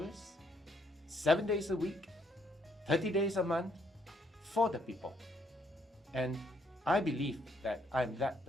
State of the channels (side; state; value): both; normal; correlation 0.71